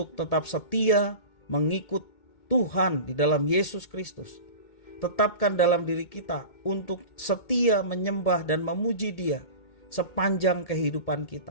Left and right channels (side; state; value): right; late; 2.2 ms